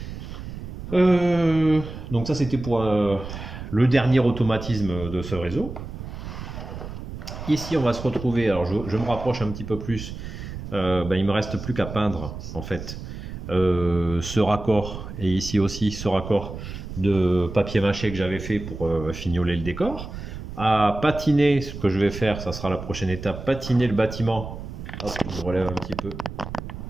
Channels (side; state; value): right; noise; rumble, 9 dB below the sound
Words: Donc ça, c'était pour le dernier automatisme de ce réseau. Ici, on va se retrouver. Alors, je me rapproche un petit peu plus. Ben, il me reste plus qu'à peindre, en fait, ce raccord. Et ici aussi, ce raccord de papier mâché que j'avais fait pour fignoler le décor. À patiner, ce que je vais faire, ça sera la prochaine étape, patiner le bâtiment. Hop, je relève un petit peu